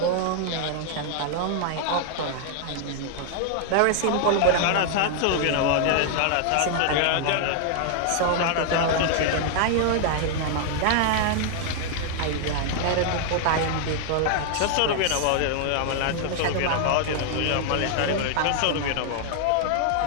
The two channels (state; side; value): different; both; correlation 0.00